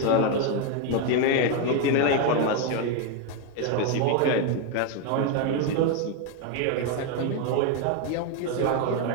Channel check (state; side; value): different; both; correlation 0.02